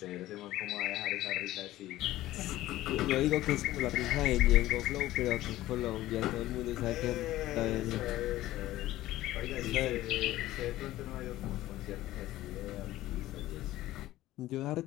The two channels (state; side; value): quieter; right; 15.6 dB